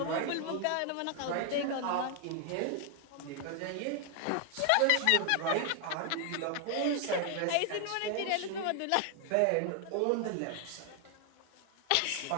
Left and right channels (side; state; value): both; different; correlation 0.00